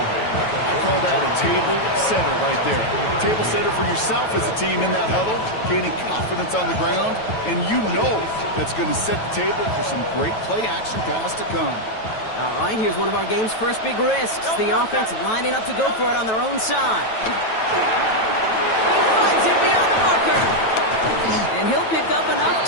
call that a table setter right there. Table setter for yourself as a team in that huddle, gaining confidence on the ground, and you know that's going to set the table for some great play-action pass to come. All right, here's one of our game's first big risks. The offense lining up to go for it on their own side. He finds it beyond the marker. And he'll pick up enough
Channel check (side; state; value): right; late; 9.2 ms